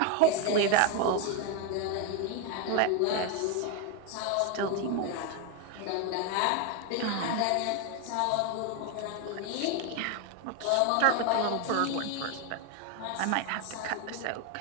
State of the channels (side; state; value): both; different; correlation 0.01